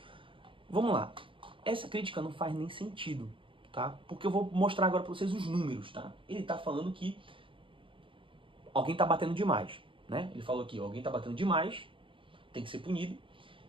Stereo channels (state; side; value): late; left; 0.25 ms